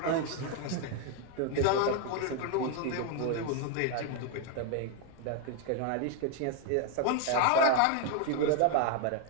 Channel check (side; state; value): both; different; correlation 0.01